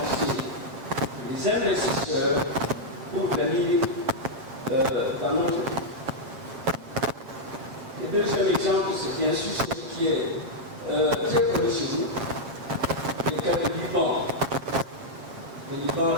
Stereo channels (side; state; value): left; late; 8.0 ms